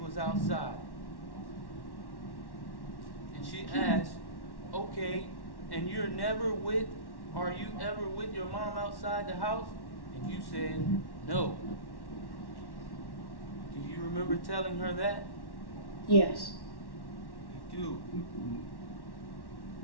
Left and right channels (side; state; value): right; late; 1.1 ms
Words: outside. And she asked, okay, and are you ever with your mom outside the house? And you said, no. Do you remember telling her that? Yes. You do.